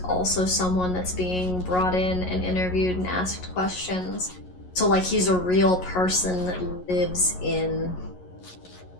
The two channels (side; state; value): right; late; 11 ms